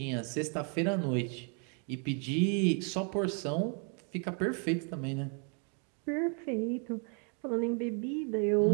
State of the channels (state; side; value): quieter; left; 39.3 dB